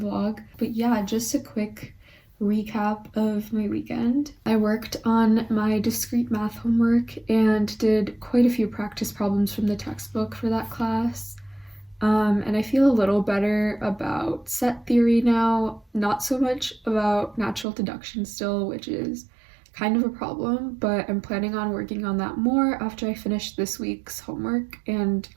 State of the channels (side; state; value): left; drops out; at 17.7 s